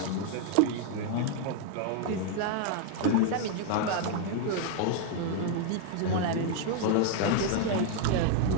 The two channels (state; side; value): different; both; correlation 0.00